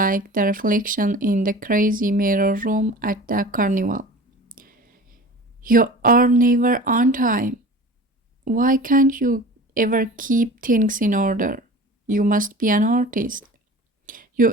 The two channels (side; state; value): both; normal; correlation 0.39